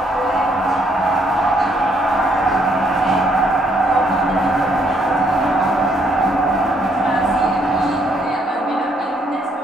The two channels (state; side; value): normal; both; correlation 0.70